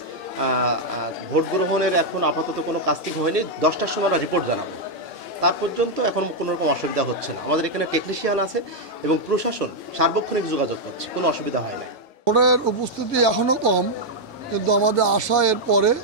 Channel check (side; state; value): both; normal; correlation -0.01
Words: ভোট গ্রহণের এখন আপাতত কোনো কাস্টিং হয়নি, 10টার সময় আমরা রিপোর্ট জানাবো। তার পর্যন্ত এখন কোনো রকম অসুবিধা হচ্ছে না। আমাদের এখানে টেকনিশিয়ান আছে এবং প্রশাসন সার্বক্ষণিক যোগাযোগ করছে, কোনো অসুবিধা হয় নাই। ভোটের উপস্থিতি এখনও কম, কিন্তু আমাদের আশা এর পরে